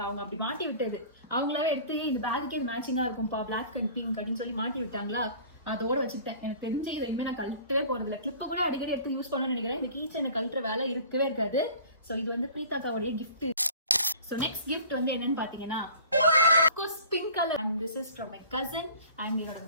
அவங்க அப்படி மாட்டி விட்டது. அவங்களாவே எடுத்து இந்த பேக்குக்கே இது மேட்சிங்கா இருக்கும்பா, பிளாக் அண்ட் பிங்க் அப்படின்னு சொல்லி மாட்டி விட்டாங்களா. அதோட வச்சுட்டேன். எனக்கு தெரிஞ்சு இதை இனிமே நான் கழட்டவே போறது இல்லை. கிளிப்பை கூட அடிக்கடி எடுத்து யூஸ் பண்ணணும்னு நினைக்கிறேன். இந்த கீ செயினை கழட்டுற வேலை இருக்கவே இருக்காது. ஸோ இது வந்து பிரீதாக்காவுடைய கிஃப்ட். ஸோ நெக்ஸ்ட் கிஃப்ட் வந்து என்னன்னு பாத்தீங்கன்னா pink colour. And this is from my cousin. And என்னோட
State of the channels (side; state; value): both; inverted; correlation -0.46